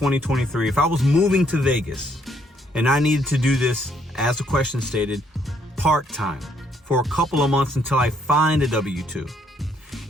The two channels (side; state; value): both; normal; correlation 0.69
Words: if I was moving to Vegas and I needed to do this, as the question stated, part-time for a couple of months until I find a W-2,